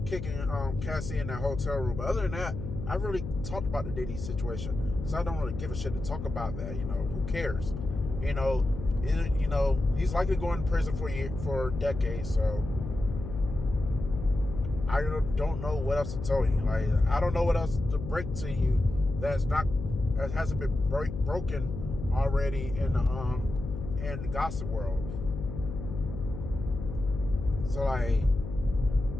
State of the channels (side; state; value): left; noise; hum, 7 dB below the sound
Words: kicking Cassie in that hotel room. But other than that, I really talked about the Diddy situation, so I don't really give a shit to talk about that. You know, who cares? You know, he's likely going to prison for decades. So I don't know what else to tell you. Like, I don't know what else to break to you that hasn't been broken already in the gossip world. So, like,